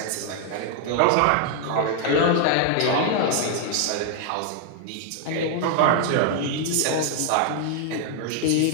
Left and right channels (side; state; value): both; different; correlation 0.00